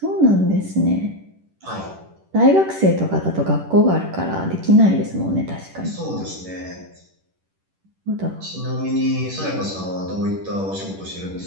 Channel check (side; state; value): left; late; 10 ms